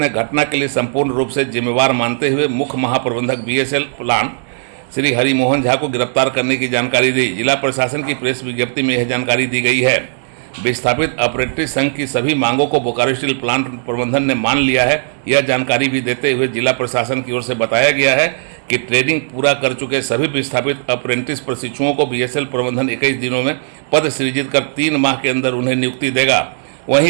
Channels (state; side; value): silent; left; digital silence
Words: घटना के लिए संपूर्ण रूप से जिम्मेवार मानते हुए मुख्य महाप्रबंधक बीएसएल प्लांट श्री हरि मोहन झा को गिरफ्तार करने की जानकारी दी। जिला प्रशासन की प्रेस विज्ञप्ति में यह जानकारी दी गई है। विस्थापित अप्रेंटिस संघ की सभी मांगों को बोकारो स्टील प्लांट प्रबंधन ने मान लिया है। यह जानकारी भी देते हुए जिला प्रशासन की ओर से बताया गया है कि ट्रेनिंग पूरा कर चुके सभी विस्थापित अप्रेंटिस प्रशिक्षुओं को बीएसएल प्रबंधन 21 दिनों में पद सृजित कर 3 माह के अंदर उन्हें नियुक्ति देगा।